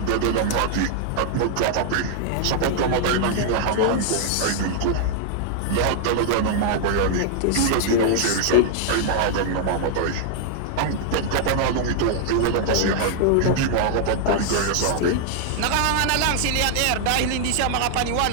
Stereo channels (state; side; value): different; both; correlation 0.00